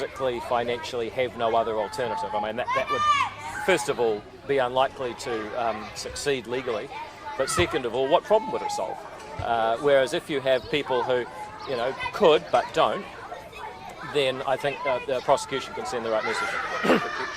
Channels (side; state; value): both; identical; correlation 1.00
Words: financially have no other alternative. That would, first of all, be unlikely to succeed legally, but second of all, what problem would it solve? Whereas if you have people who, could but don't, then I think the prosecution can send the right message. predictions